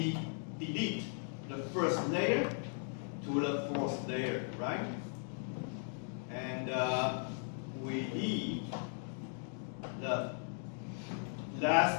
delete the first layer to the fourth layer, right? And we leave the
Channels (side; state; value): right; silent; 53 dB below the other